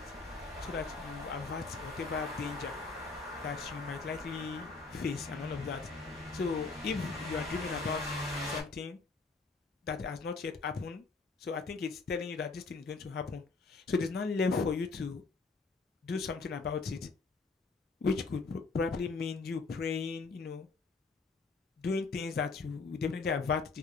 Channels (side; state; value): right; quieter; 4.2 dB